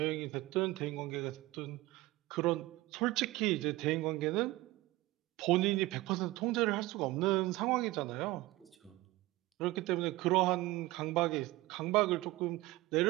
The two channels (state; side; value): quieter; left; 19.2 dB